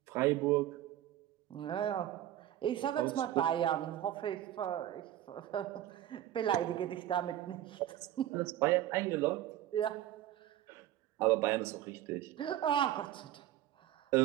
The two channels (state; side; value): quieter; left; 12.7 dB